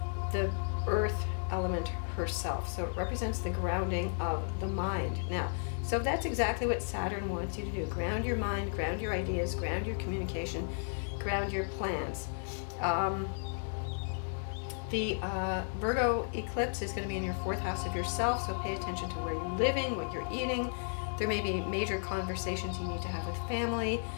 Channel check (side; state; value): right; silent; digital silence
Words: the earth element herself, so it represents the grounding of the mind. Now, so that's exactly what Saturn wants you to do. Ground your mind, ground your ideas, ground your communication, ground your plans. The Virgo eclipse is going to be in your 4th house of yourself, so pay attention to where you're living, what you're eating. There may be major conversations you need to have with family.